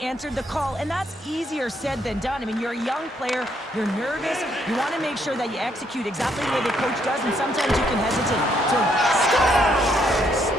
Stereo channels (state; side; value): normal; both; correlation 0.73